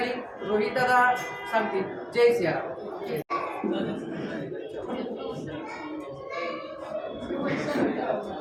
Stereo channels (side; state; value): both; identical; correlation 1.00